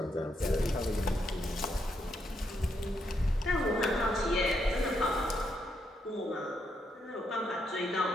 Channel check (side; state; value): both; normal; correlation 0.79